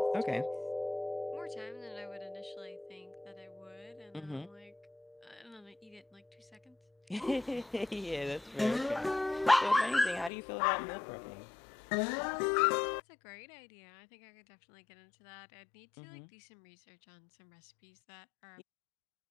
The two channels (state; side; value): drops out; right; at 10.3 s